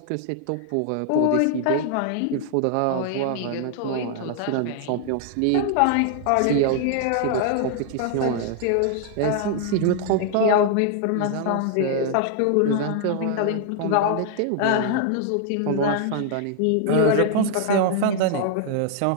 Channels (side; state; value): both; different; correlation 0.00